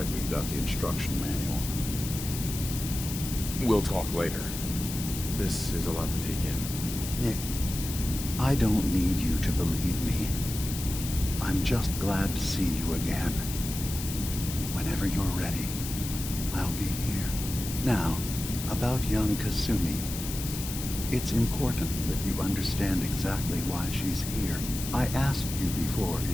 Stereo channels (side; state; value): left; noise; hiss, 7 dB below the sound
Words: we've got the instruction manual. We'll talk later. This is a lot to take in. Nick, I don't need you to believe me. I'm just glad to see you again. Whenever you're ready, I'll be here. Now, about young Kasumi. It's important that you understand exactly why she's here. I asked you before